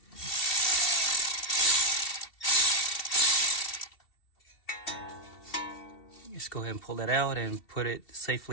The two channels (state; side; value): late; right; 2.7 ms